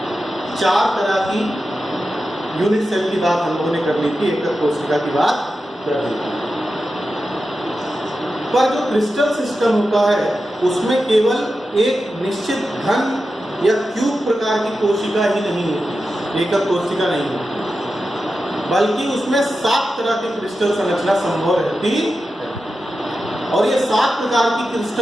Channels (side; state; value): both; normal; correlation 0.91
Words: 4 तरह की यूनिट सेल की बात हम लोगों ने कर ली थी, एकक कोशिका की बात कर ली थी। पर जो क्रिस्टल सिस्टम होता है उसमें केवल एक निश्चित घन या क्यूब प्रकार की कोशिका ही नहीं होती, एकक कोशिका नहीं होती, बल्कि उसमें 7 तरह की क्रिस्टल संरचना संभव रहती है। और ये 7 प्रकार की